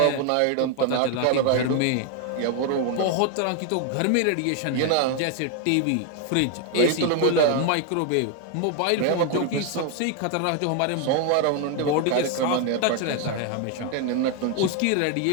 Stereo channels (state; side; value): different; both; correlation 0.01